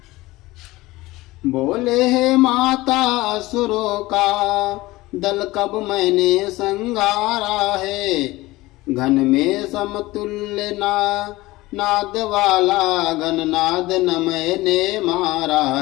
बोले है माता असुरों का दल कब मैंने संगारा है, घन में समतुल्य नाद वाला घननाद न मैंने मारा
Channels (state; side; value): quieter; right; 19.4 dB